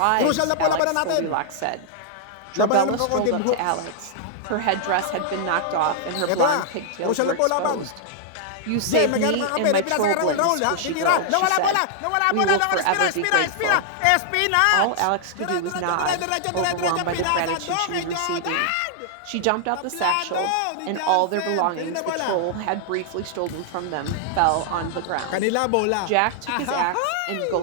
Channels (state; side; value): different; both; correlation -0.01